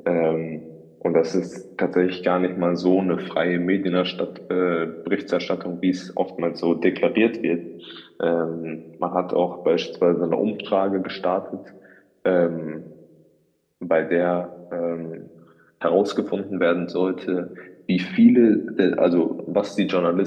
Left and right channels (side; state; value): both; identical; correlation 1.00